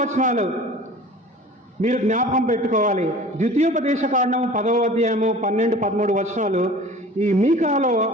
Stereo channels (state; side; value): normal; both; correlation 0.43